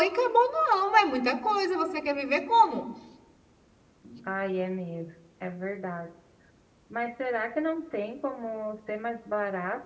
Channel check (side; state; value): both; identical; correlation 1.00